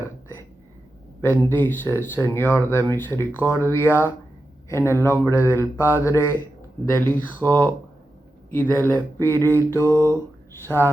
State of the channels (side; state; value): both; normal; correlation 0.90